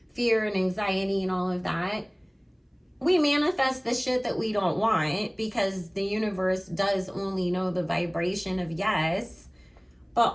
fear and anxiety and all of that, we manifest the shit that we don't want, because the universe does only know the vibration of yes.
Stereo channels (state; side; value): identical; both; correlation 1.00